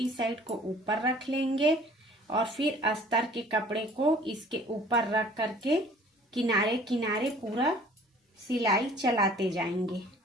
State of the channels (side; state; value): both; normal; correlation 0.52